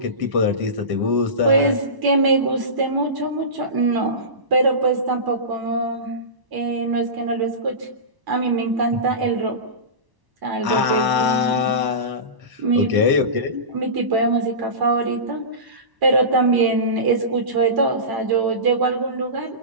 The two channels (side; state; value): left; late; 1.0 ms